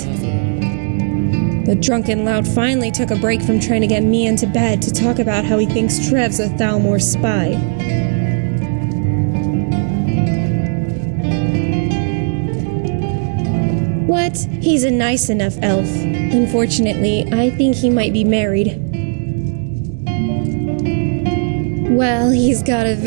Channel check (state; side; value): silent; left; 69 dB below the other